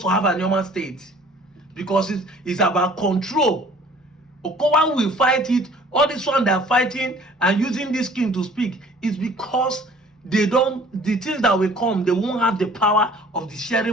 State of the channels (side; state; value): both; normal; correlation 0.52